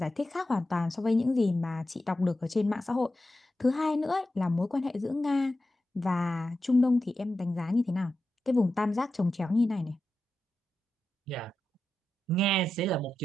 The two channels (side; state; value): both; normal; correlation 0.90